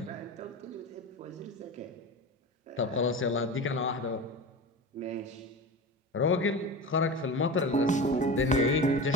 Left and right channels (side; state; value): both; normal; correlation 0.29